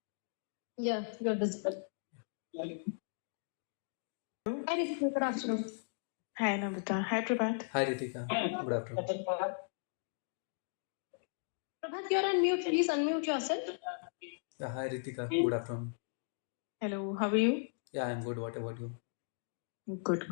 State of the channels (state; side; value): silent; right; digital silence